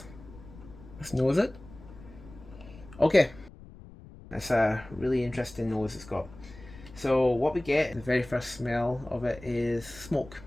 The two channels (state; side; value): noise; left; rumble, 19 dB below the sound